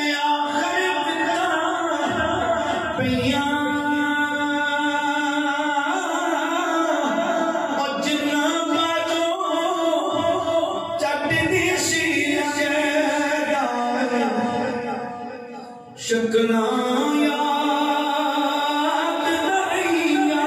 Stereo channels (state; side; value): identical; both; correlation 1.00